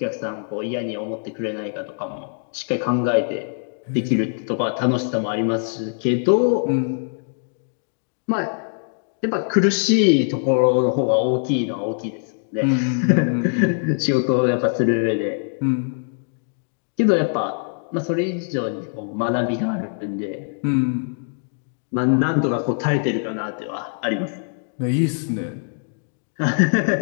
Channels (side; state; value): right; silent; digital silence